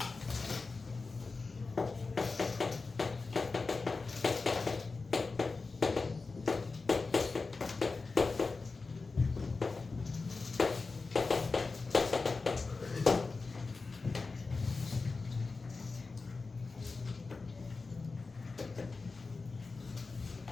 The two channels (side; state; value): right; quieter; 4.0 dB